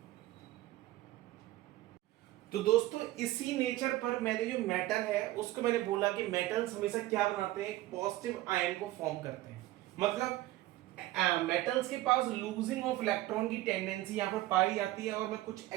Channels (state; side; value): quieter; left; 16.6 dB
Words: तो दोस्तों इसी नेचर पर मैंने जो मेटल है उसको मैंने बोला कि मेटल्स हमेशा क्या बनाते हैं, एक पॉजिटिव आयन को फॉर्म करते हैं। मतलब मेटल्स के पास लूजिंग ऑफ इलेक्ट्रॉन की टेंडेंसी यहाँ पर पाई जाती है। और मैं कुछ